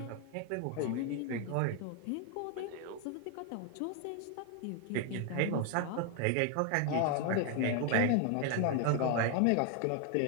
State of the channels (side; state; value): both; different; correlation 0.01